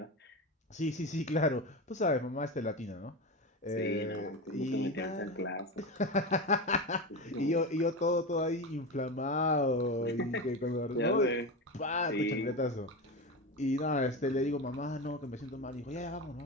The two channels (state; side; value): normal; both; correlation 0.20